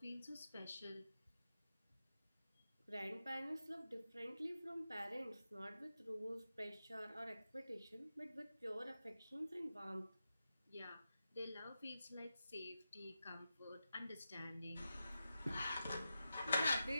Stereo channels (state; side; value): inverted; both; correlation -0.91